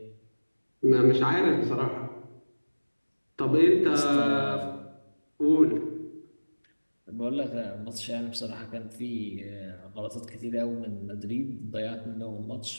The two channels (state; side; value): inverted; both; correlation -1.00